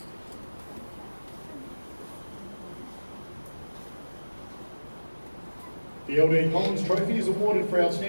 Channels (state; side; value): inverted; both; correlation -1.00